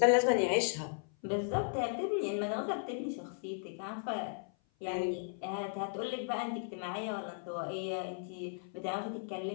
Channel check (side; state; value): right; silent; 54 dB below the other